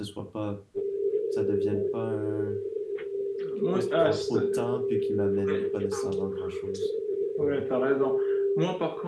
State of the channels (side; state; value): both; identical; correlation 1.00